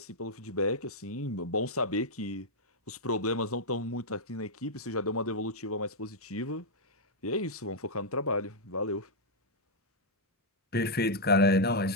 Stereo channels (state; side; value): normal; both; correlation -0.05